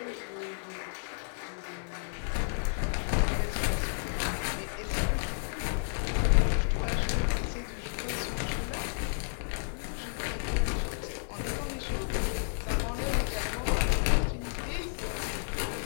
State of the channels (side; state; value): right; silent; 57 dB below the other